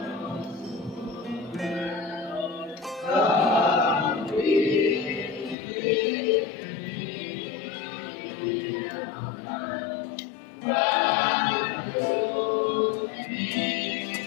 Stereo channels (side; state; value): right; drops out; at 5.6 s